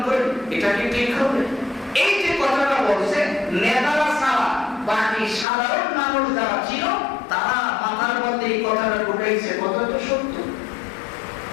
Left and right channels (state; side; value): drops out; right; at 5.5 s